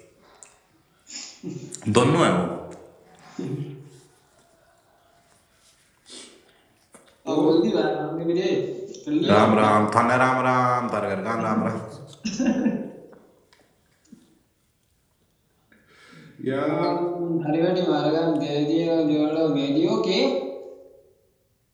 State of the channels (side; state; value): both; identical; correlation 1.00